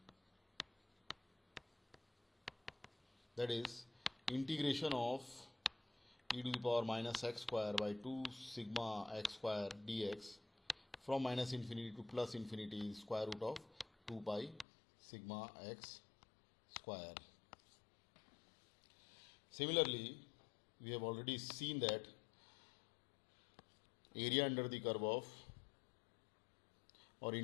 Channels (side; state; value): right; drops out; at 14.7 s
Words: that is integration of e to the power minus x square by 2 sigma x square dx from minus infinity to plus infinity is square root of 2 pi sigma x square. Similarly, we have already seen that area under the curve of or